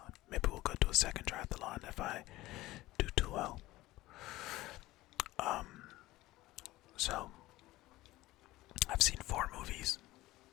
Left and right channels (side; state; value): right; quieter; 17.7 dB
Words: Maybe we'll go to a second triathlon if I do too well. So I've seen 4 movies